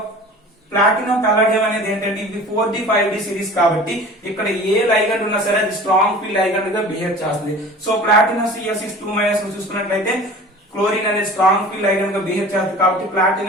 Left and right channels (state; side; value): normal; both; correlation 0.41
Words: ప్లాటినం పల్లడియం అనేది ఏంటంటే ఇది 4D 5D సిరీస్ కాబట్టి ఇక్కడ ఏ లైగండ్ ఉన్నా సరే అది స్ట్రాంగ్ ఫీల్డ్ లైగండ్ గా బిహేవ్ చేస్తుంది. సో ప్లాటినం Cl6 చూసుకున్నట్లయితే క్లోరిన్ అనేది స్ట్రాంగ్ ఫీల్డ్ లైగండ్ గా బిహేవ్ చేస్తుంది కాబట్టి